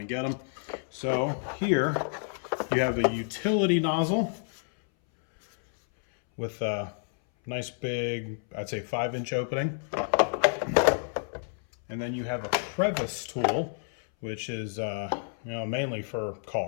get them. So here you have a utility nozzle with a nice big, I'd say 5-inch opening. And then you have a Crevice tool, which is mainly for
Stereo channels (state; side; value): silent; right; 58 dB below the other